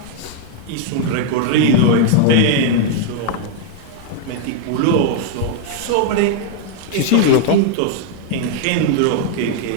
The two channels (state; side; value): different; both; correlation 0.00